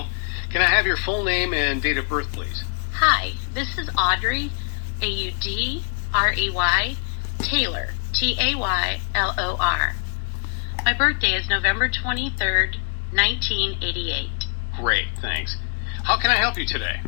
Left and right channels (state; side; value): silent; right; digital silence